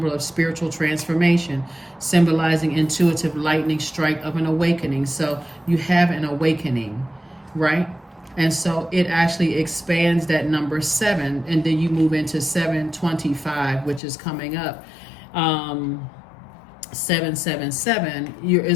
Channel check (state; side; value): drops out; right; at 14.0 s